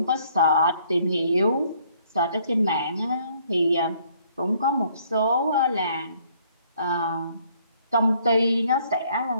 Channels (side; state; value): both; inverted; correlation -0.64